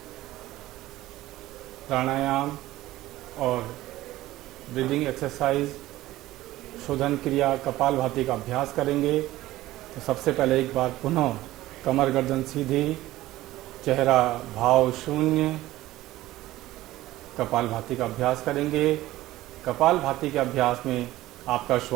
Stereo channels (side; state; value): left; quieter; 16.2 dB